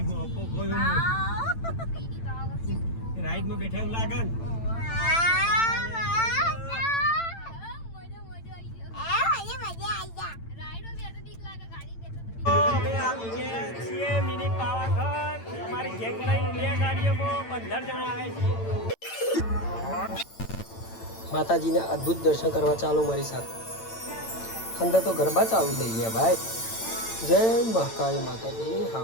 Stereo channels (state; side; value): late; right; 8.9 ms